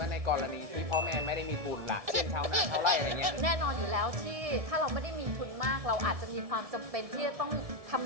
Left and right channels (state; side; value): late; left; 1.7 ms